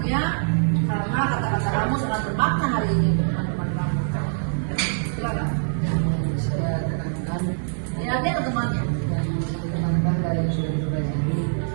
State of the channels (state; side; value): silent; left; 60 dB below the other